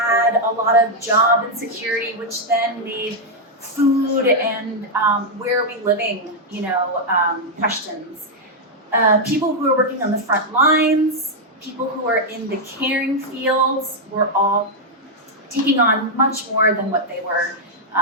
a lot of job insecurity, which then made food and where are we living, questions. People who are working on the front lines, people who are in the caring fields, were all taking on much more than what they were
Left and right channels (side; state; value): both; normal; correlation -0.02